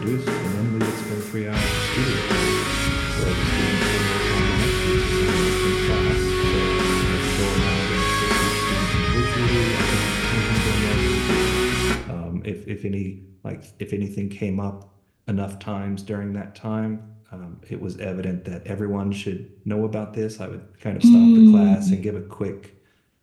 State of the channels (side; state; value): both; identical; correlation 1.00